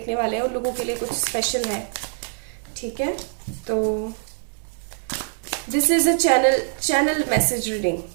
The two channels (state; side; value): silent; left; digital silence